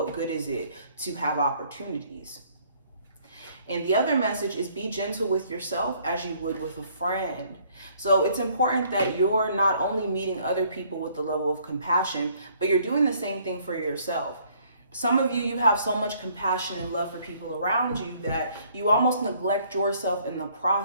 good is it to have opportunities? And the other message is, be gentle with yourself as you would with a friend. So it's important that you're not only meeting other people with the level of compassion, but you're doing the same thing for yourself. Some of you have so much compassion and love for people around you that you almost neglect yourself in the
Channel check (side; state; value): both; inverted; correlation -0.62